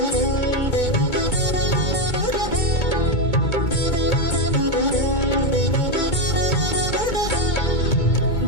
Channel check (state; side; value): late; right; 2.2 ms